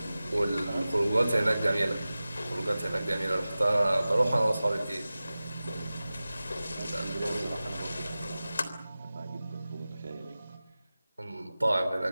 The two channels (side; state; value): both; inverted; correlation -0.96